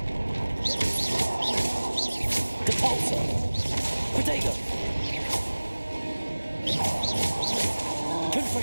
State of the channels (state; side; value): inverted; both; correlation -1.00